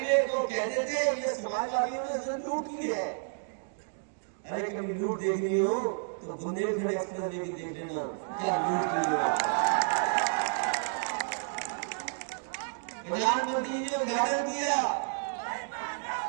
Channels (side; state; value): left; silent; digital silence